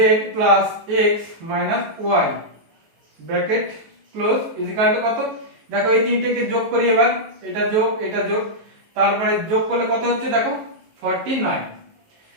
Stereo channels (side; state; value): left; late; 19 ms